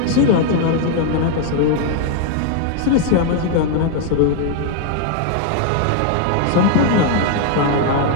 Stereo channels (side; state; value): both; different; correlation 0.00